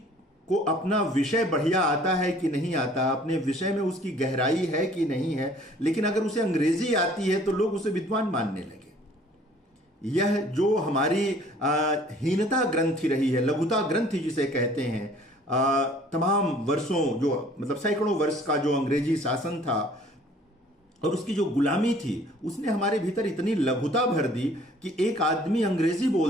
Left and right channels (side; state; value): both; normal; correlation 0.55